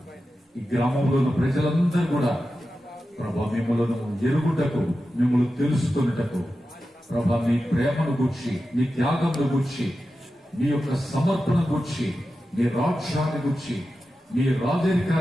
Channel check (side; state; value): both; normal; correlation 0.92